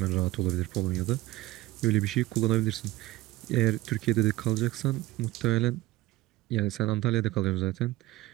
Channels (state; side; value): quieter; left; 18.0 dB